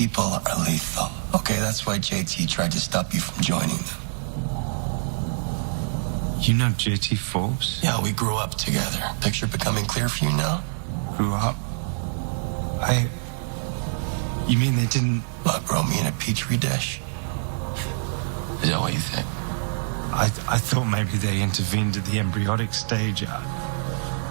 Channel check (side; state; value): left; silent; 62 dB below the other